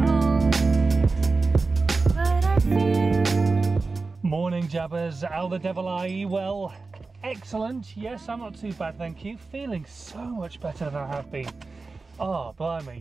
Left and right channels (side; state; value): left; quieter; 3.9 dB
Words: Morning, Jabbers. How the devil are you? Well, excellent. Yes, I'm not too bad, thank you. Feeling so much better than I have been. Oh,